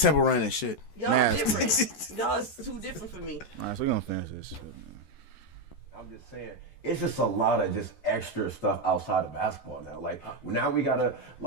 Run and shit. Y'all different. Y'all's too different for me. All right, so we're gonna finish this shit. I'm just saying, it's just a lot of just extra stuff outside of basketball now. Like now we gotta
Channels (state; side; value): late; right; 14 ms